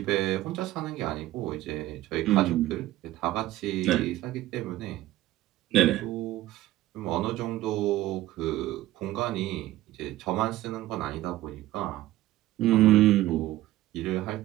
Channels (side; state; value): left; quieter; 15.6 dB